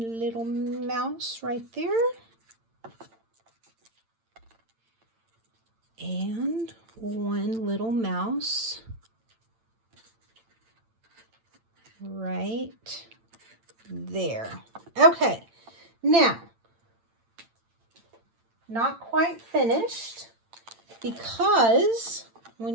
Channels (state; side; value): late; left; 8.9 ms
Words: little mouse right there. And one little mouse right there. Okay, now, not quite finished because we